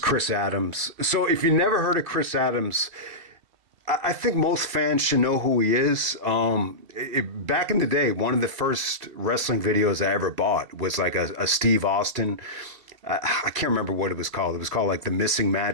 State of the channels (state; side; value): late; left; 2.7 ms